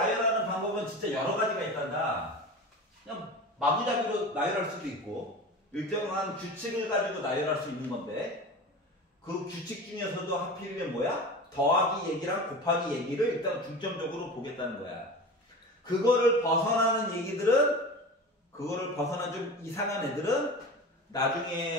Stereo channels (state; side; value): normal; both; correlation 0.32